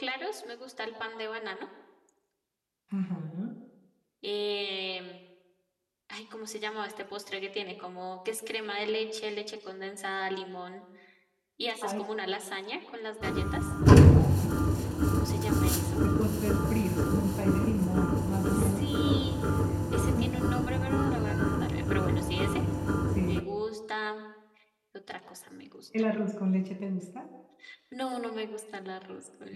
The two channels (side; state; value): both; identical; correlation 1.00